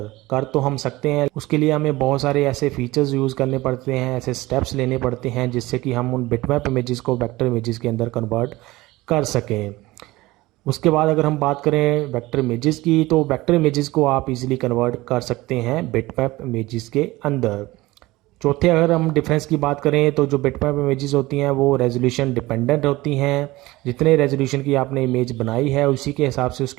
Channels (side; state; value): left; quieter; 19.4 dB